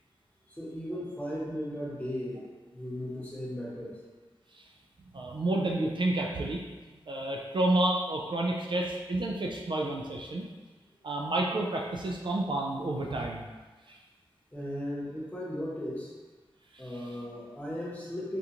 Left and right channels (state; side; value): normal; both; correlation 0.77